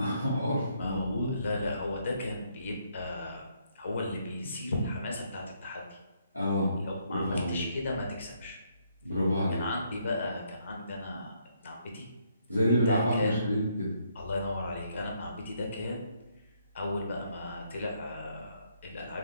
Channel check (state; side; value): inverted; both; correlation -0.72